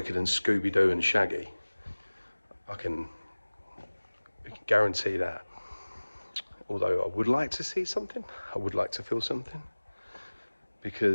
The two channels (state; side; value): inverted; both; correlation -1.00